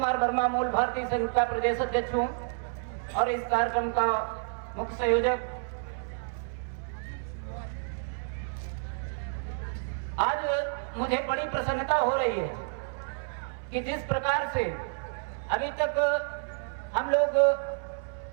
वर्मा, मूल भारतीय संघ का प्रदेश अध्यक्ष हूं और इस कार्यक्रम का मुख्य संयोजक। आज मुझे बड़ी प्रसन्नता हो रही है कि जिस प्रकार से अभी तक हम लोग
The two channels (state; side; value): silent; left; 58 dB below the other